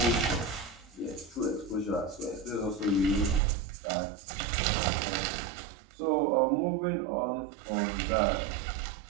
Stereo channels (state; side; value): drops out; left; at 3.4 s